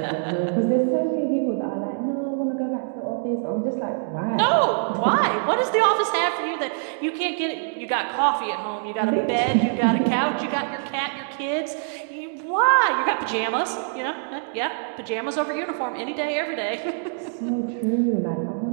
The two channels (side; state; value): left; silent; digital silence